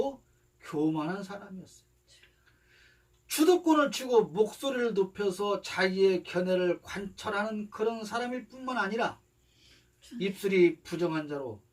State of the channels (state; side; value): identical; both; correlation 1.00